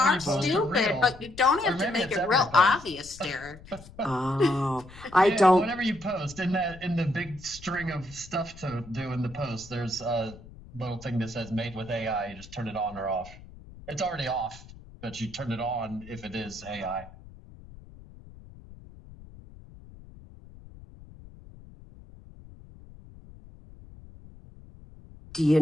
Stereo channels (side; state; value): left; noise; rumble, 19 dB below the sound